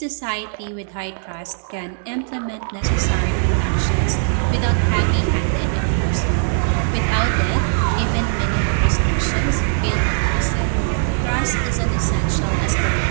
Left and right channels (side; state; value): left; silent; 66 dB below the other